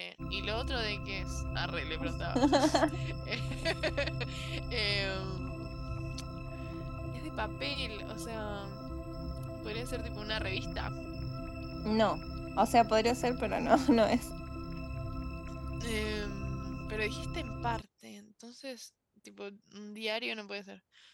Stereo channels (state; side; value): identical; both; correlation 1.00